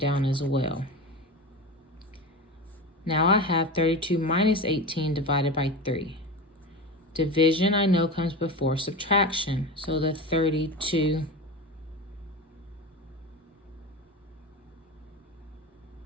as well. Now I have 32 minus 18 divided by 3. Division I know comes before subtraction. So the 32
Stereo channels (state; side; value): normal; both; correlation 0.26